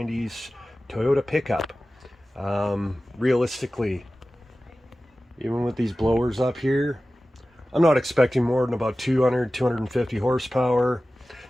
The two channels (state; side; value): normal; both; correlation 0.96